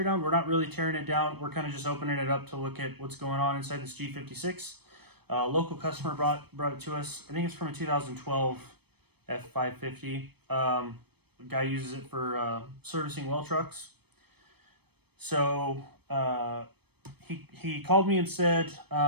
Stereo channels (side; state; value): left; late; 0.97 ms